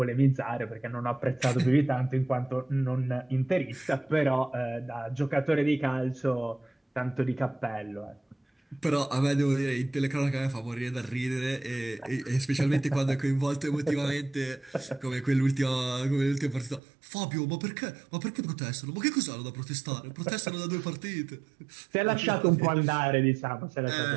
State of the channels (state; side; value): drops out; left; at 16.8 s